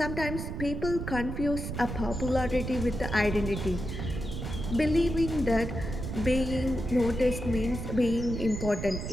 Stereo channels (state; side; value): noise; right; rumble, 5 dB below the sound